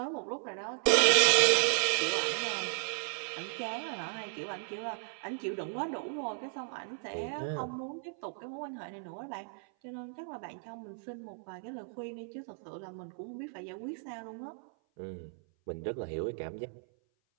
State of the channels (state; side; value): silent; left; 55 dB below the other